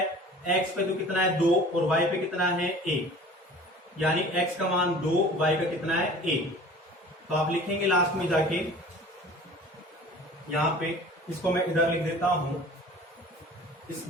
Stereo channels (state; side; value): normal; both; correlation 0.44